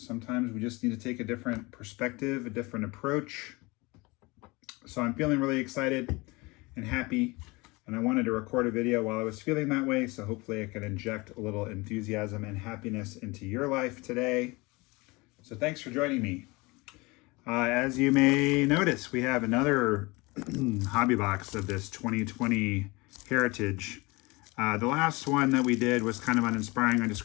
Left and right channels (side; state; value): right; quieter; 24.5 dB